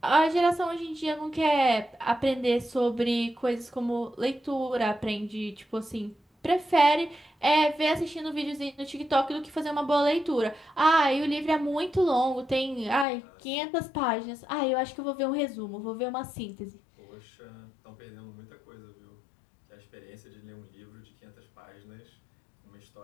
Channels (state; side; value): drops out; right; at 13.1 s